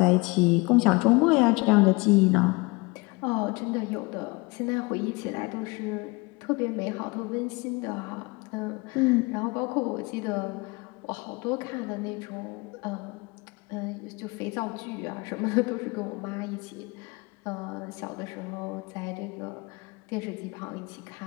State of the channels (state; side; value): quieter; right; 26.1 dB